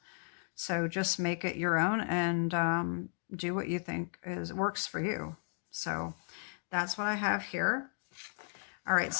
So just make it your own and do what you think works for you. So that's what I have here. All right,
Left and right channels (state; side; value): silent; right; 54 dB below the other